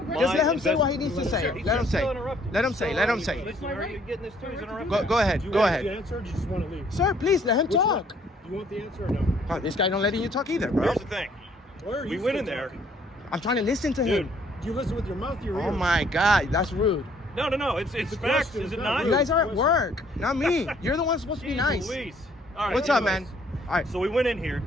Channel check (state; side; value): normal; both; correlation 0.63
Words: my let him say what he needs to invest- say. He's Let him just say. so interrupted. Let him say. Let him say. Listen, are you getting this too? He's interrupting. Go ahead. Do you Go want ahead. the answer or do you just want to leave? Sir, please let him Which one? talk. Do you want the answer or no? Oh, this guy don't letting you talk either, bro. Here's the thing. Where are We you went still in there. talking? I'm trying to listen to Dude. him. Do you listen with your mouth or your ears? Oh my God, that's rude. No. It's a facts, question, is it it's not? not You guys are at work, not me. You're the one supposed to be Jeez nice. Louise. All right, What's up, anyways. man? All right. So we went in here,